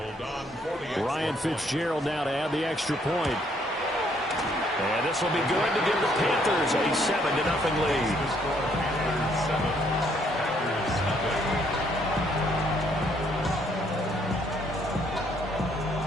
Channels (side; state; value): both; normal; correlation 0.68